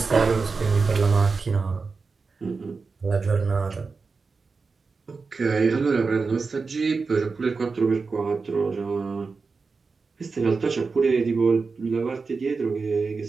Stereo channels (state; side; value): quieter; left; 4.5 dB